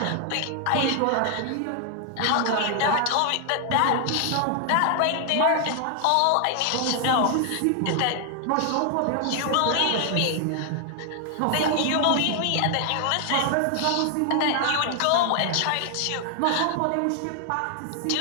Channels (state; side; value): different; both; correlation 0.00